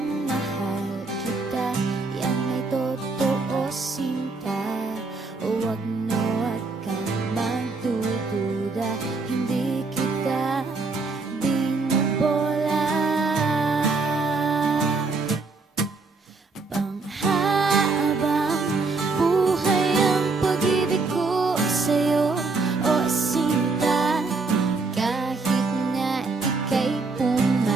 mahal kita, yan ay totoo, sinta. Huwag na huwag kang magdududa, hindi kita binubola. Panghabang buhay ang pag-ibig ko sa'yo, o sinta. Kahit na ika'y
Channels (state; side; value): quieter; left; 3.9 dB